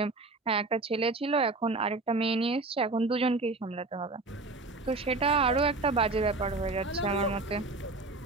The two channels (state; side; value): quieter; left; 3.4 dB